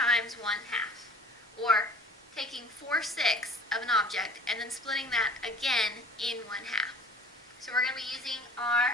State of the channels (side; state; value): both; normal; correlation 0.46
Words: 1/2, or taking 4/6 of an object and then splitting that again in 1/2. So we're going to be using